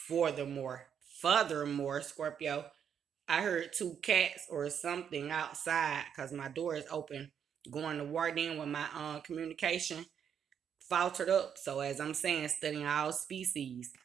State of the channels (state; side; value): quieter; left; 8.1 dB